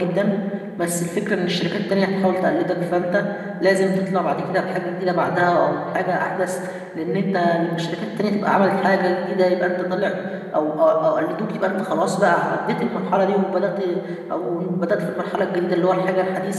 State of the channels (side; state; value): both; identical; correlation 1.00